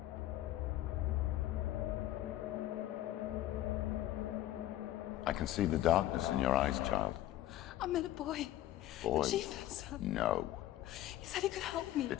I can see the darkness in your eyes, child. I met a boy. Boy. The chief had son. No. He said he could help me.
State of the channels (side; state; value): right; quieter; 13.8 dB